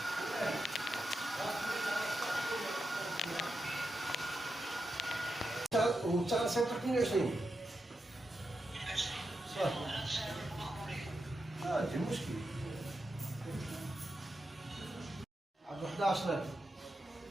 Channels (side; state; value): both; normal; correlation 0.87